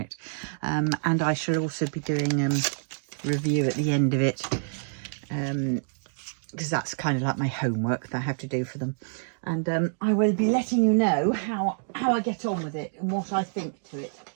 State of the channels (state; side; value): silent; left; digital silence